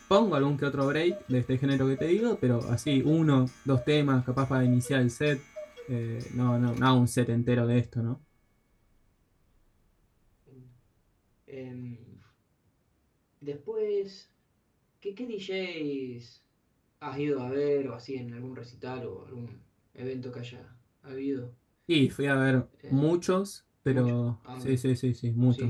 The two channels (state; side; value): identical; both; correlation 1.00